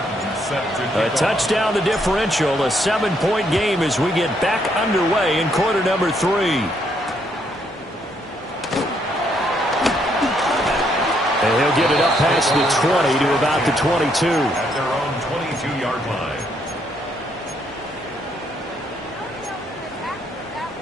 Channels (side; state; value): both; normal; correlation 0.72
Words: A touchdown, the differential, a 7-point game as we get back underway in quarter number 3. And he'll get it up past the 20 to about the 22. At their own 22-yard line.